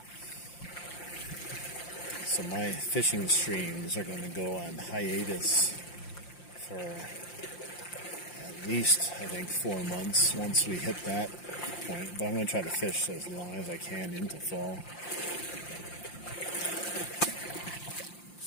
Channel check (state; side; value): late; right; 5.7 ms